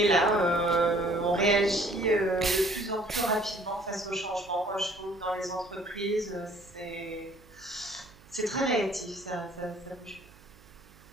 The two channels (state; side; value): noise; right; hum, 25 dB below the sound